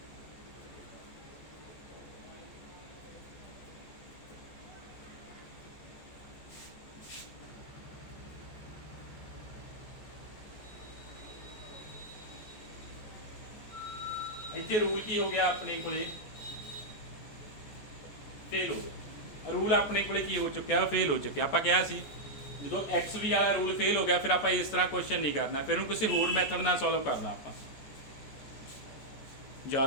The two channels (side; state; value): right; late; 14 ms